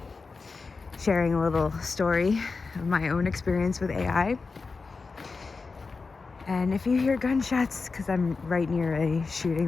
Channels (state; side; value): quieter; right; 4.4 dB